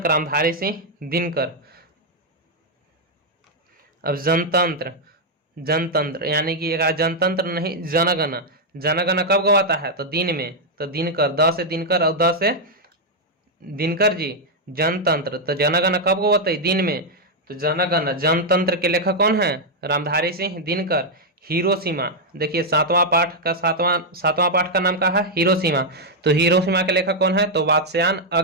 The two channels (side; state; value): both; normal; correlation -0.02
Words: रामधारी सिंह दिनकर। अब जनतंत्र, जनतंत्र यानी कि जनतंत्र नहीं, जनगण, जनगण कब गवाता है? तो दिन में। तो दिनकर, द से दिनकर और द से दिनकर जी। जनतंत्र, तो जनगण कब गवाते है? दिन में। तो जनगण, जनतंत्र के लेखक कौन है? रामधारी सिंह दिनकर। हिरोशिमा, देखिए सातवां पाठ का, सातवां पाठ का नाम क्या है? हिरोशिमा। तो हिरोशिमा के लेखक कौन है? तो वात्स्यायन